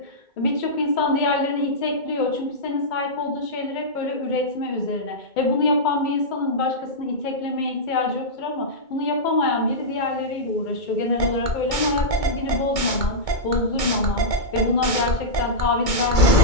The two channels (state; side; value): late; right; 2.2 ms